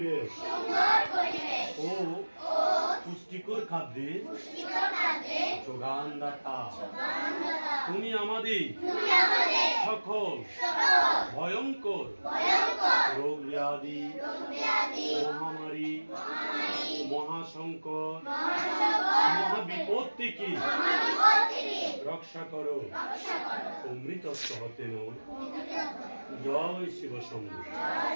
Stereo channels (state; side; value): inverted; both; correlation -1.00